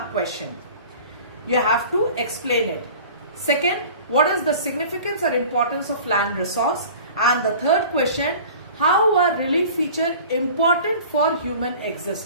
question. You have to explain it. Second, what is the significance or importance of land resource? And the third question, how are relief features important for human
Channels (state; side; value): inverted; both; correlation -0.43